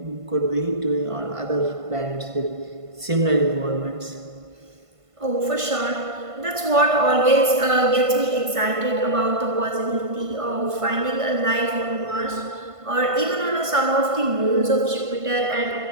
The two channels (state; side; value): late; left; 1.5 ms